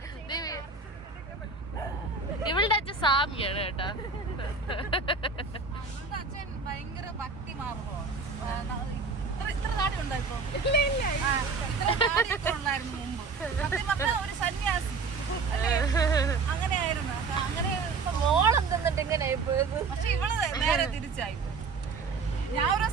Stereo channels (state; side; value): quieter; left; 4.6 dB